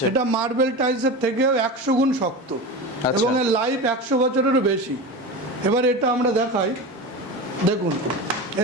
এটা মার্বেল টাইলসের থেকেও 100 গুণ শক্ত, এবং এর লাইফ 100 বছরেরও বেশি। এবার এটা আমরা দেখাই, দেখুন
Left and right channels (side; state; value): both; normal; correlation 0.26